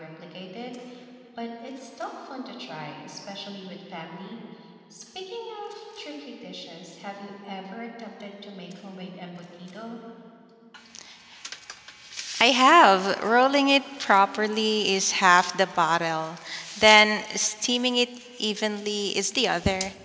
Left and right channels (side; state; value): both; identical; correlation 1.00